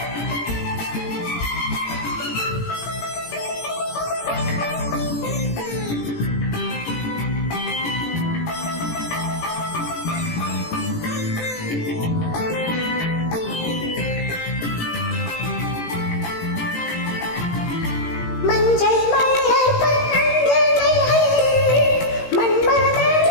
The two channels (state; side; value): late; right; 18 ms